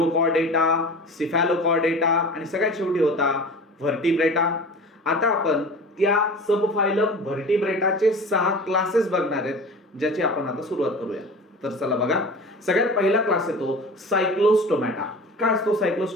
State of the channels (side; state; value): both; normal; correlation 0.37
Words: सिफॅलोकॉर्डेटा आणि सगळ्यात शेवटी होता व्हर्टिब्रेटा. आता आपण त्या सब फायलम व्हर्टिब्रेटाचे 6 क्लासेस बघणार आहेत, ज्याची आपण आता सुरुवात करूया. तर चला बघा, सगळ्यात पहिला क्लास येतो सायक्लोस्टोमॅटा. काय असतो